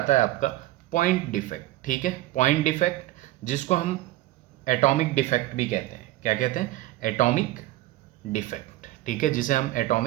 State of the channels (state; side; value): quieter; left; 16.1 dB